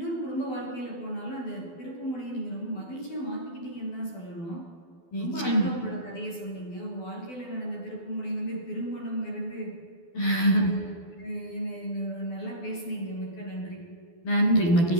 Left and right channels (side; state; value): right; late; 12 ms